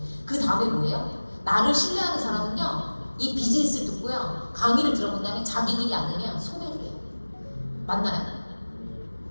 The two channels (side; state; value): both; inverted; correlation -1.00